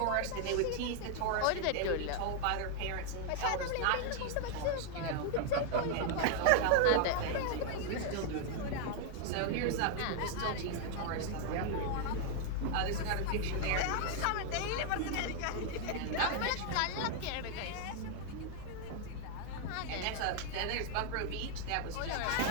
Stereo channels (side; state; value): both; different; correlation 0.00